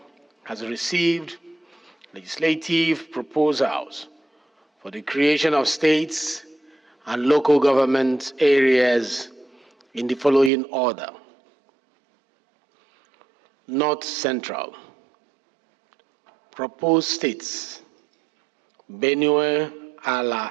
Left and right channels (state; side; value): drops out; left; at 10.5 s